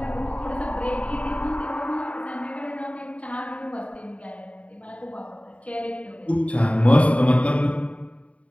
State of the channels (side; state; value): right; late; 0.065 ms